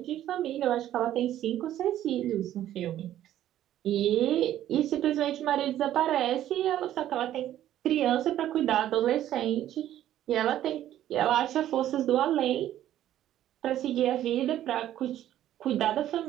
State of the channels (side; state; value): left; quieter; 12.3 dB